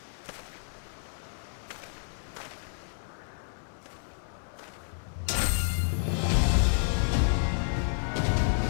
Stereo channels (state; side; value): silent; right; digital silence